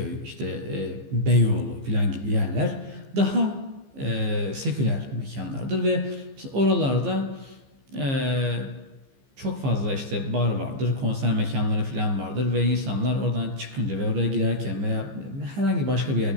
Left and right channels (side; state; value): left; late; 15 ms